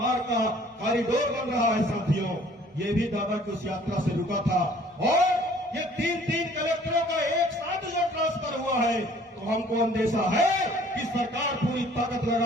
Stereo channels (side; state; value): both; normal; correlation 0.55